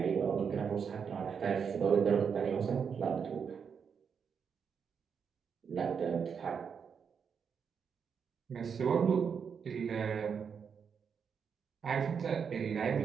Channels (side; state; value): left; quieter; 6.6 dB